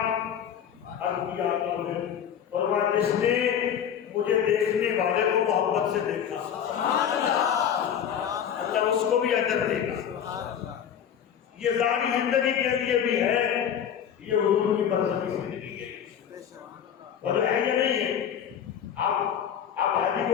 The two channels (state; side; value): quieter; right; 8.8 dB